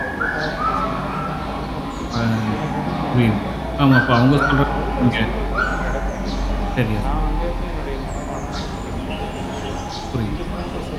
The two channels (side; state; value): both; identical; correlation 1.00